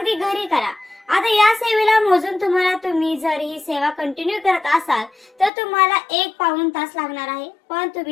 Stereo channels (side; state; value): right; drops out; at 5.5 s